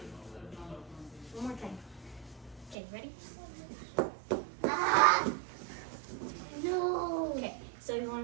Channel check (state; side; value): drops out; left; at 2.8 s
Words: One more time. Okay, ready? No. Okay, so you